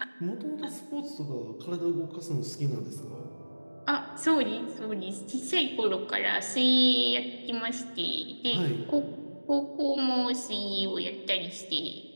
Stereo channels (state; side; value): inverted; both; correlation -1.00